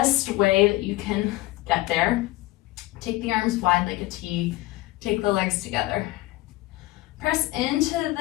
way that you can get there, take the arms wide like a T, take the legs together. Press into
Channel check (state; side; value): quieter; right; 18.7 dB